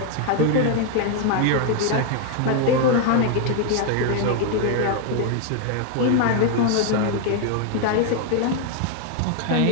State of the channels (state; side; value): different; both; correlation 0.00